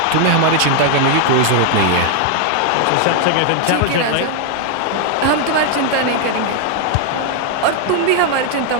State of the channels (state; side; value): different; both; correlation 0.00